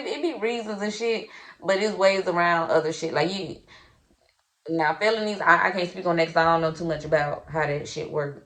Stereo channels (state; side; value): identical; both; correlation 1.00